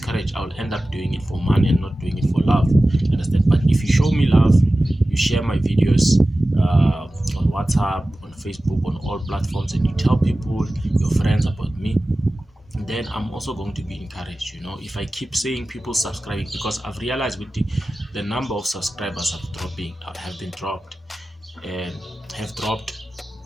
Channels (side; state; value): both; normal; correlation 0.96